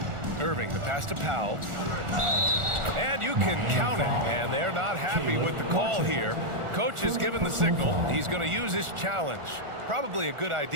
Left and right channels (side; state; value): left; late; 1.4 ms